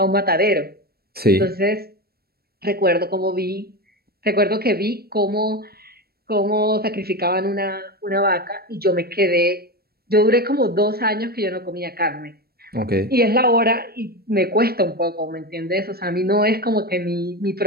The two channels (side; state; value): left; late; 0.45 ms